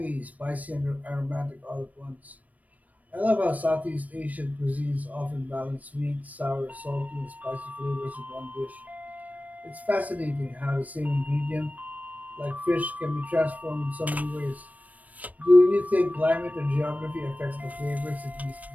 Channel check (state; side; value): late; left; 0.072 ms